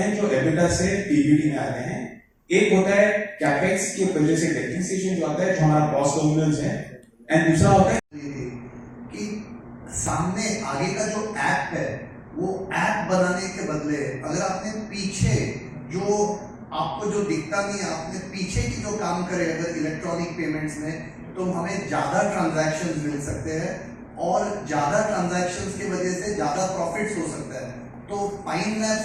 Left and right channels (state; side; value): identical; both; correlation 1.00